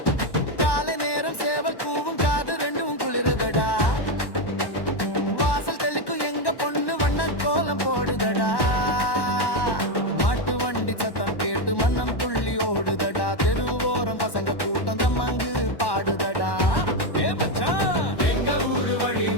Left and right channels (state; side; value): late; right; 1.1 ms